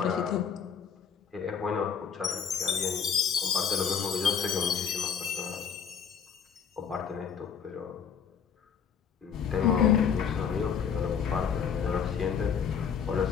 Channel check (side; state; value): right; quieter; 7.1 dB